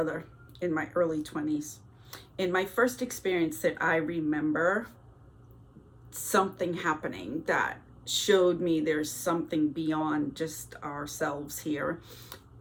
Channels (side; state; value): both; identical; correlation 1.00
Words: in my early 20s. In my first experience that I remember something happening that showed me there's something beyond just ourselves here